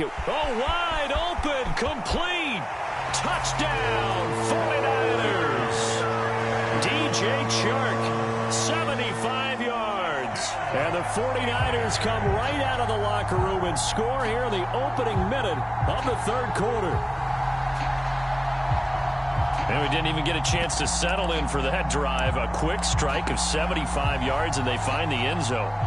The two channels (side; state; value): both; identical; correlation 1.00